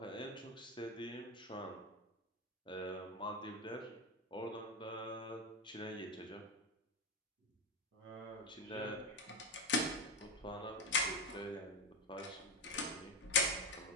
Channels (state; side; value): normal; both; correlation 0.12